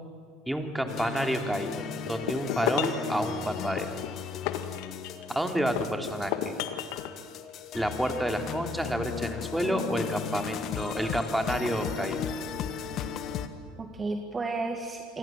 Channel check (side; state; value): both; normal; correlation 0.69